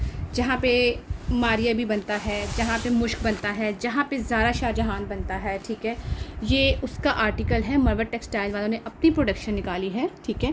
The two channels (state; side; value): identical; both; correlation 1.00